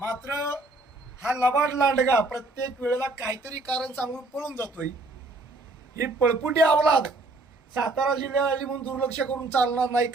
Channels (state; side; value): quieter; left; 3.0 dB